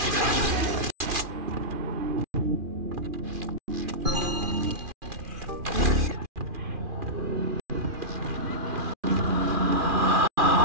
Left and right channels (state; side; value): late; left; 2.4 ms